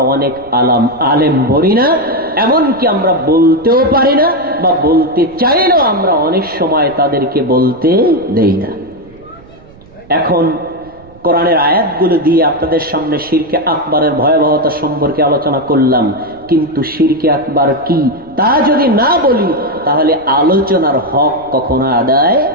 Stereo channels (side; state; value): right; noise; rumble, 25 dB below the sound